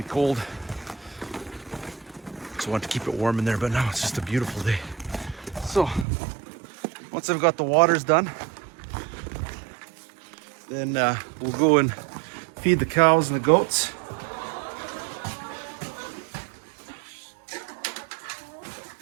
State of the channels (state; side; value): drops out; left; at 6.1 s